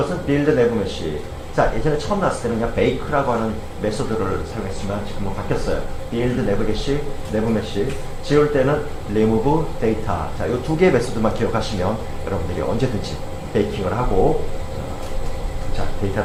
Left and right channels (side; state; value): both; identical; correlation 1.00